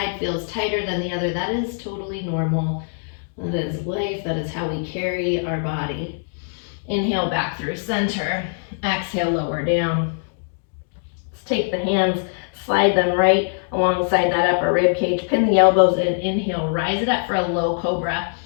feels tighter than the other. That is totally normal. That is life. That is how we carry our body. Inhale back through center. Exhale, lower down. Let's take the hands, slide them right alongside that upper rib cage. Pin the elbows in. Inhale, rise it up for a low cobra.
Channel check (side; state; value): right; silent; digital silence